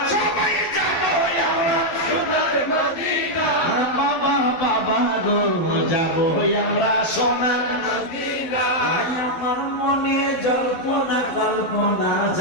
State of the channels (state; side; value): late; right; 12 ms